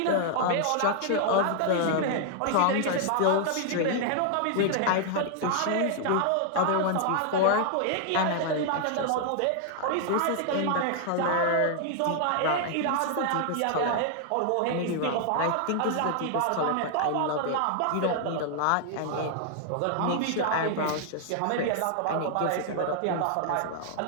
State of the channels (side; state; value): both; different; correlation 0.00